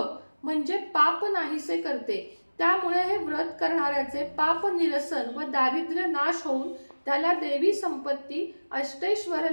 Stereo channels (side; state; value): both; inverted; correlation -1.00